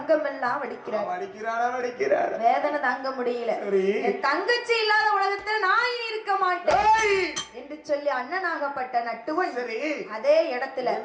வடிக்கிறார். வடிக்கிறாளா? வேதனை தாங்க முடியல. சரி. என் தங்கச்சி இல்லாத உலகத்துல நான் இனி இருக்க மாட்டேன் என்று சொல்லி அண்ணனாகப்பட்ட நட்டுவன் சரி அதே இடத்துல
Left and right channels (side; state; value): both; identical; correlation 1.00